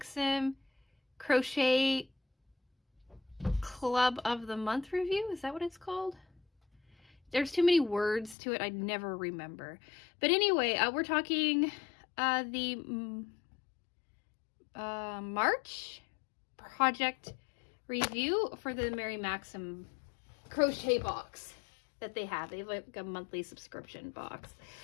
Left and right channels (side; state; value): right; drops out; at 8.3 s